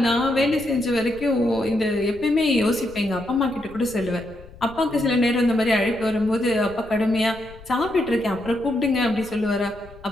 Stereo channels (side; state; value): left; noise; rumble, 20 dB below the sound